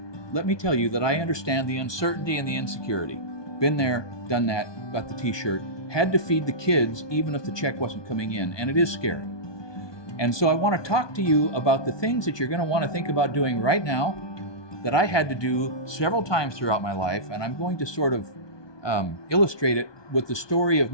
let me tell you that I understand the uncertainty and the insecurity. Been there, done that, got the t-shirt, had to feed the kids even if the check wasn't coming in, and it is scary. And so I want to talk to you about the things that you're going to want to think about doing right now that I had to do several times throughout my life, and I'm going to sort of illustrate it with the story of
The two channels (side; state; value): right; late; 1.2 ms